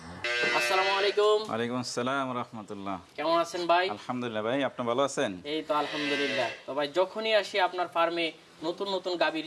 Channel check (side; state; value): both; identical; correlation 1.00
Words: আসসালামু আলাইকুম। ওয়ালাইকুম আসসালাম ওয়া রাহমাতুল্লাহ। কেমন আছেন ভাই? আলহামদুলিল্লাহ ভাই, আপনি ভালো আছেন? এই তো আলহামদুলিল্লাহ। তো ভাই, যখনই আসি আপনার ফার্মে নতুন নতুন